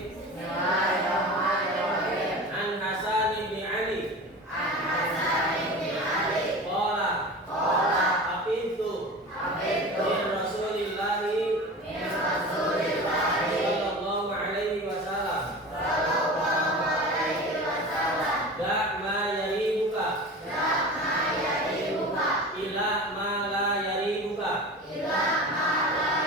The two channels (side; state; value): both; normal; correlation 0.33